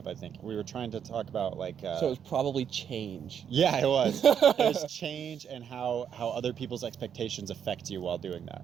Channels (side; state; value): left; quieter; 8.3 dB